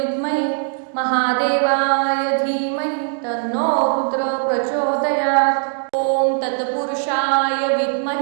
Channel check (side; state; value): left; silent; digital silence